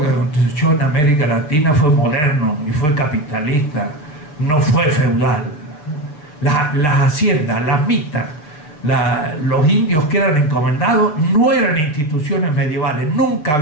aconteció en América Latina fue moderno y fue capitalista, no fue feudal. Las haciendas, las mitas, los indios que eran encomendados no eran instituciones medievales, nunca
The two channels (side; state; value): right; late; 6.7 ms